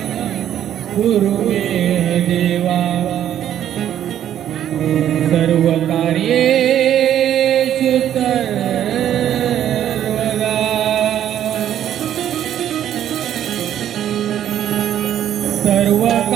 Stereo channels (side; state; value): left; quieter; 10.8 dB